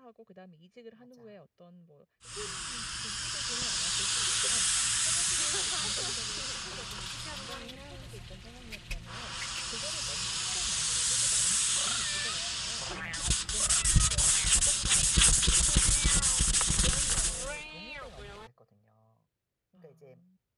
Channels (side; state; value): both; identical; correlation 1.00